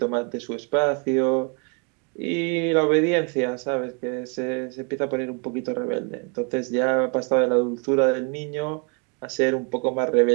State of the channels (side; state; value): left; quieter; 35.7 dB